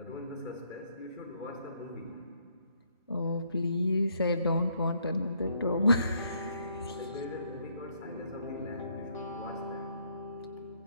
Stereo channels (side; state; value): both; inverted; correlation -0.70